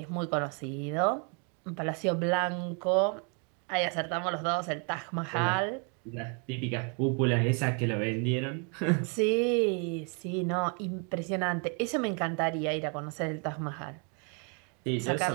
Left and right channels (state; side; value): quieter; left; 38.3 dB